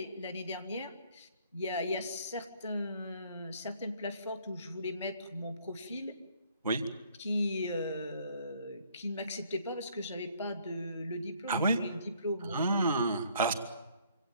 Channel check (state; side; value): inverted; both; correlation -0.62